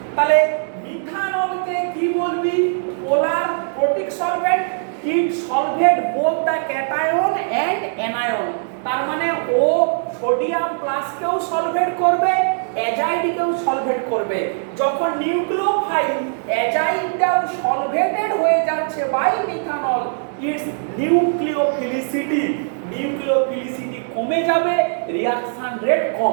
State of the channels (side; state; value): left; silent; digital silence